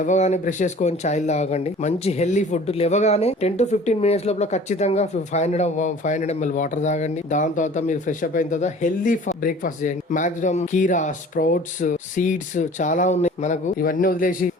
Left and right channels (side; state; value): both; normal; correlation 0.46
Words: బ్రష్ చేసుకొని చాయ్ తాగండి. మంచి హెల్దీ ఫుడ్ లేవగానే 10 to 15 మినిట్స్ లోపల ఖచ్చితంగా 500 ml వాటర్ తాగండి. దాని తర్వాత మీరు ఫ్రెష్ అప్ అయిన తర్వాత హెల్దీ బ్రేక్ఫాస్ట్ చేయండి. మాక్సిమం కీరా, స్ప్రౌట్స్, సీడ్స్ చాలా ఉన్నాయి మనకు. ఇవన్నీ వదిలేసి